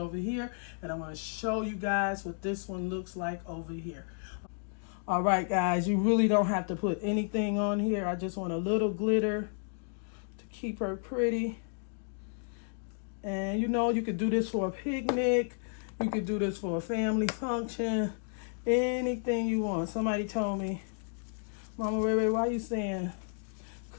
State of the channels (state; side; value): silent; right; 56 dB below the other